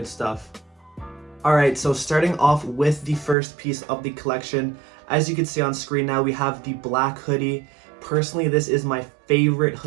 stuff. Alright, so starting off with the first piece of the collection, as you can see on screen now, we have the black hoodie. Personally, this is my favorite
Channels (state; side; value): drops out; left; at 3.4 s